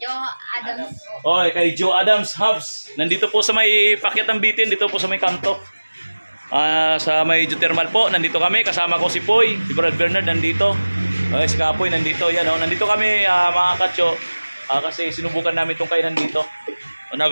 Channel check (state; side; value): inverted; both; correlation -1.00